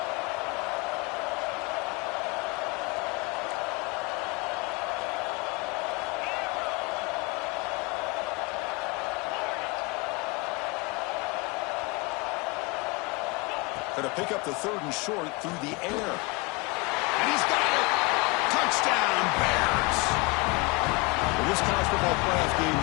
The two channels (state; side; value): quieter; right; 26.7 dB